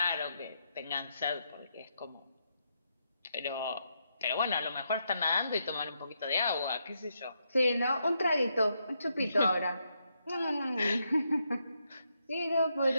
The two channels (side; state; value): both; inverted; correlation -0.80